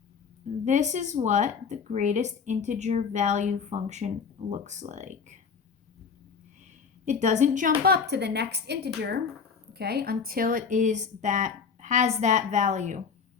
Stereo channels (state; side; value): quieter; right; 6.0 dB